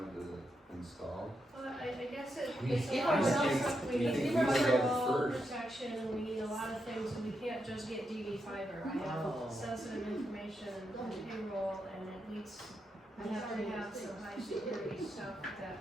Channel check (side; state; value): both; normal; correlation 0.84